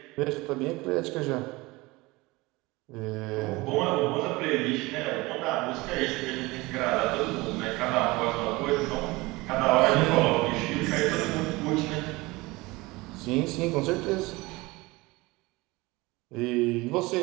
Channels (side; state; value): left; quieter; 22.3 dB